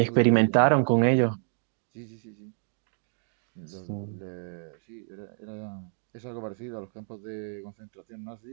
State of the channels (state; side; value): silent; left; 59 dB below the other